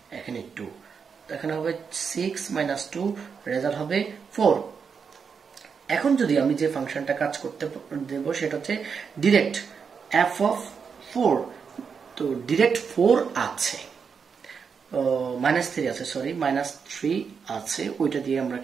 এখানে 2, এখানে হবে 6 - 2, রেজাল্ট হবে 4। এখন যদি আমি যে ফাংশনটা কাজ করতে দেব সেটা হচ্ছে ডিরেক্ট f(4). তো ডিরেক্ট 4 আছে, -3 আছে, সরি -3 আছে, ওইটা দিয়ে আমরা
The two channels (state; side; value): quieter; left; 6.1 dB